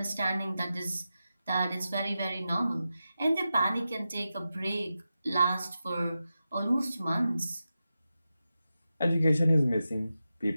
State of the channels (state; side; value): inverted; both; correlation -0.91